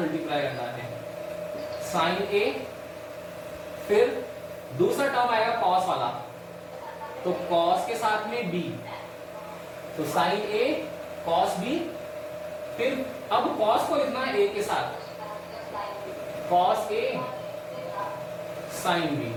मल्टीप्लाई करना है, साइन ए, फिर दूसरा टर्म आएगा कॉस वाला, तो कॉस के साथ में बी, तो साइन ए कॉस बी, फिर अब कॉस को लिखना है ए के साथ, कॉस ए साइन बी।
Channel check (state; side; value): identical; both; correlation 1.00